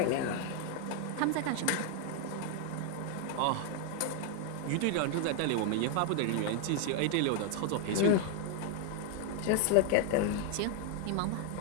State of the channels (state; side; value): different; both; correlation 0.00